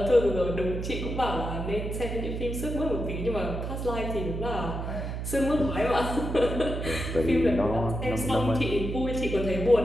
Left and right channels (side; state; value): right; noise; hum, 4 dB below the sound